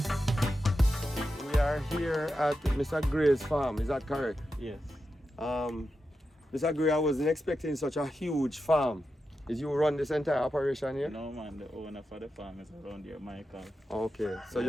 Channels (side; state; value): both; normal; correlation 0.89